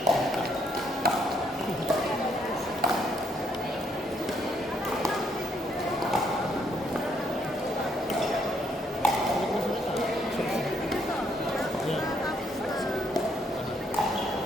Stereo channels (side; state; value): both; normal; correlation 0.72